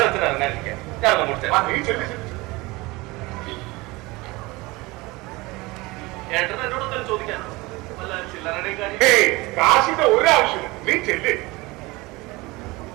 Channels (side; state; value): left; quieter; 22.6 dB